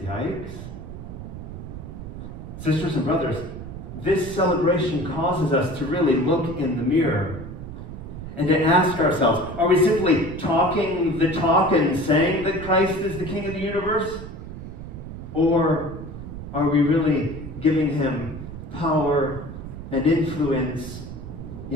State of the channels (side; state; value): right; noise; rumble, 10 dB below the sound